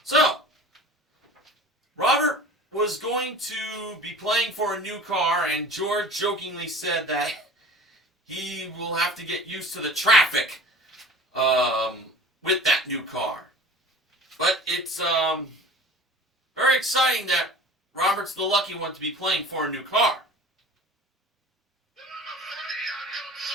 So, Robert was going to be playing for a new car, and George jokingly said that he will have to get used to the traffic with that new car. But it's very exciting that Robert's the lucky one to be playing for a new car.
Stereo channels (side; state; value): both; normal; correlation 0.41